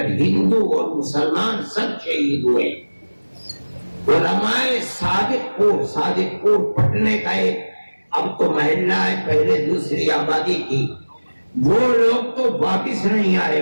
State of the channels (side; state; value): both; inverted; correlation -1.00